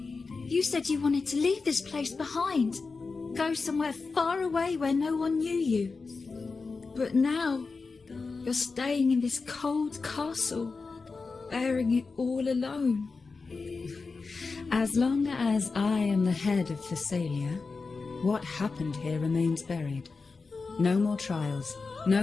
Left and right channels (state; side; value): quieter; right; 4.3 dB